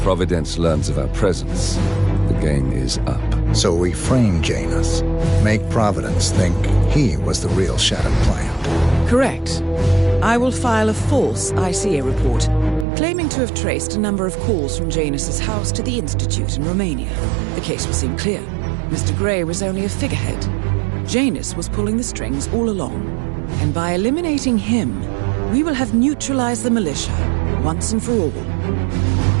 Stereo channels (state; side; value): drops out; left; at 12.9 s